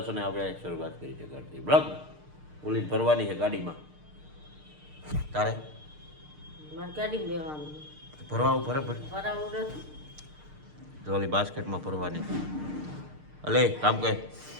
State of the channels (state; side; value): late; left; 6.6 ms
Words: અને આપણે શરૂઆત કરી છે ઘરથી બ્લોગ. પોલીસ ભરવાની છે ગાડીમાં. તારે મારે ગાડી લેવાનું ભરવા ભરે ભરાવું નથી તો ઓલી બાસ્કેટમાં ભરવાની. અલે કામ કહે